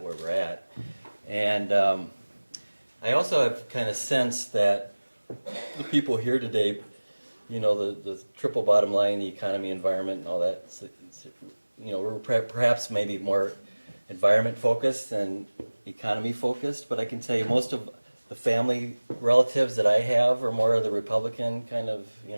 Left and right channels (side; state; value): both; inverted; correlation -1.00